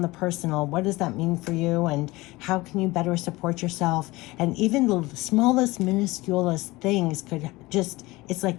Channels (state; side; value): quieter; right; 20.9 dB